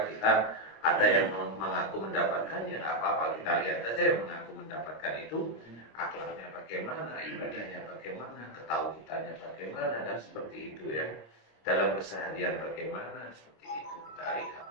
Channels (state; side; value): late; right; 26 ms